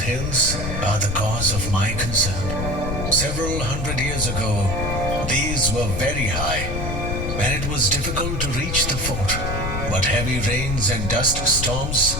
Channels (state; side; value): noise; left; rumble, 3 dB below the sound